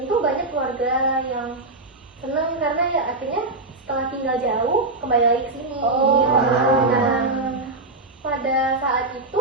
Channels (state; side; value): quieter; left; 3.0 dB